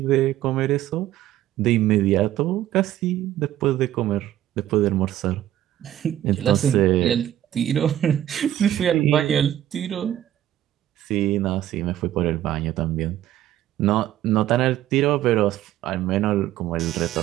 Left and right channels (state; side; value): quieter; left; 12.7 dB